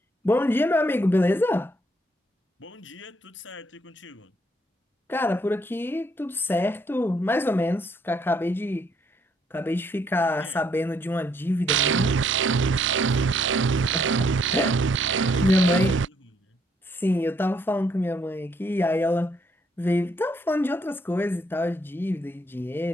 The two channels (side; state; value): both; normal; correlation 0.70